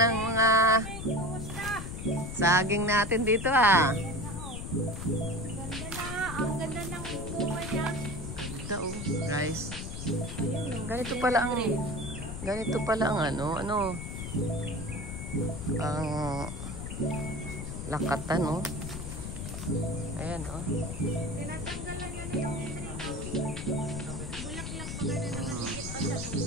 ng mga saging natin dito Ganda na, ang ganda ng bunga niya. Ganda guys. Ganito pala ang ang lakatan Ayan Tinatanggalan niya na yung bulaklak mga nananigit pa sa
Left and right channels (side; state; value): left; noise; rumble, 6 dB below the sound